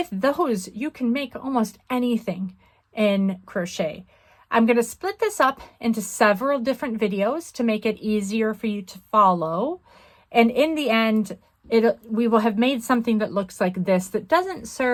those, you can make almost anything in crochet. I'm going to split this up into several different videos to make it easier for you to follow. And in the end, we will have made something that looks like this that doesn't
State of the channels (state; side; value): identical; both; correlation 1.00